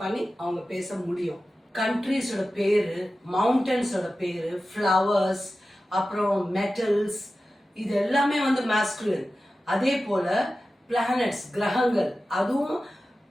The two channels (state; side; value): normal; both; correlation 0.94